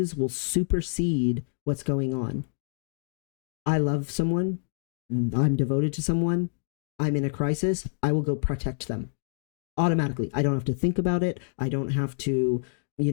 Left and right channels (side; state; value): right; silent; digital silence